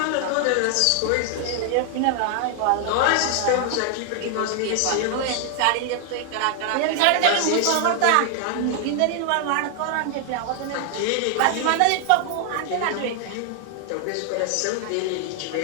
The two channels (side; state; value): both; different; correlation 0.00